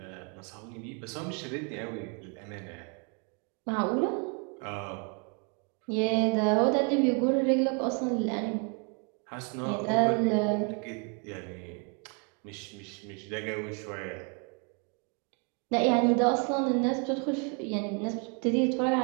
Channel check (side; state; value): left; quieter; 36.1 dB